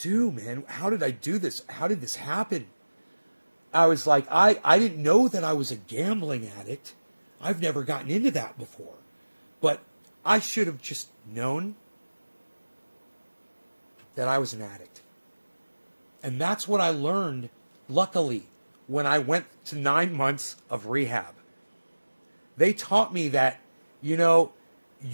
do, man? How did I do this? How did this happen? I was like, I didn't know that I was a gambling addict. I've never gotten into that before. But I should have just known. that I was an addict. And that's what I learned, luckily, when I went to 9 months of rehab. They taught me that, you know,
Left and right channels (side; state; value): both; inverted; correlation -1.00